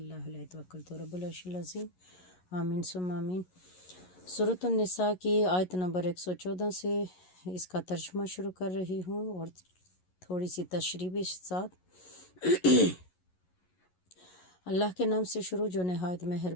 هو علیہ توکلت رب العرش العظیم آمین ثم آمین۔ سورۃ النساء کی آیت نمبر 114 سے اس کا ترجمہ شروع کر رہی ہوں اور تھوڑی سی تشریح بھی ساتھ۔ اللہ کے نام سے شروع جو نہایت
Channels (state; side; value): late; right; 11 ms